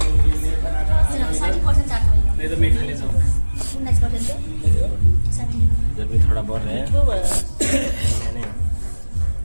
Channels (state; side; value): inverted; both; correlation -1.00